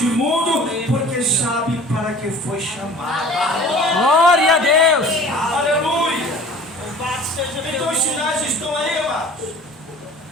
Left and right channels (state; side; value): normal; both; correlation 0.45